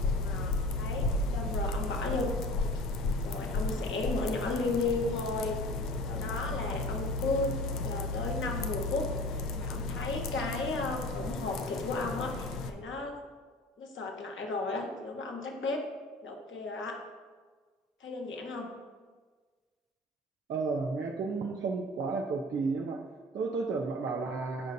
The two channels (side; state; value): both; normal; correlation 0.39